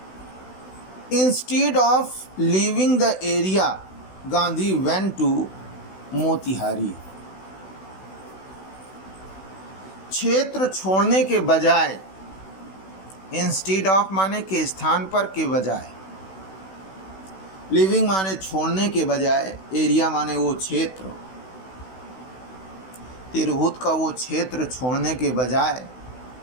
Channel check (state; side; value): late; right; 16 ms